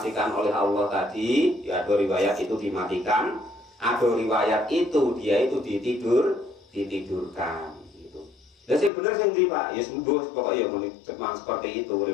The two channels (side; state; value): right; drops out; at 8.9 s